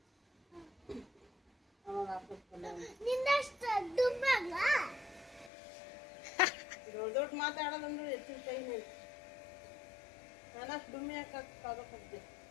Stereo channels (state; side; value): drops out; right; at 5.5 s